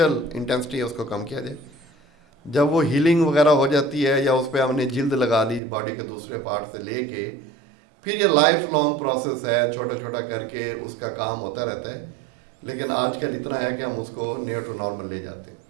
انٹینسٹی ہے اس کو کم کیا جائے. جب وہ ہیلنگ وغیرہ ہو جاتی ہے یا اس پہ ہم نے جلد لگا لی باڈی کے دوسرے پارٹ سے لے کے، پھر یہ لائف لانگ پروسیس ہے، چھوٹا چھوٹا کر کے اس کا کام ہوتا رہتا ہے. لیکن آج کل اتنا ہے کہ ہم اس کو نیئر ٹو نارمل لے جاتے ہیں.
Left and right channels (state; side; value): drops out; left; at 5.6 s